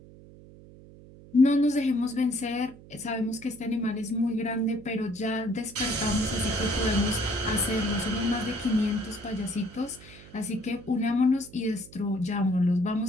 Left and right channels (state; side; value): noise; right; hum, 20 dB below the sound